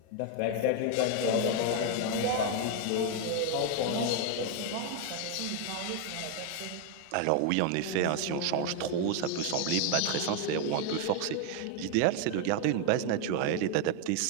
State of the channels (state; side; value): different; both; correlation 0.01